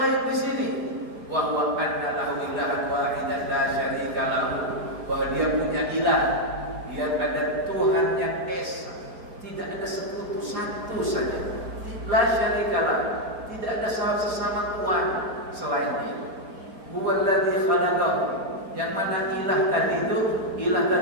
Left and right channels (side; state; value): left; late; 4.6 ms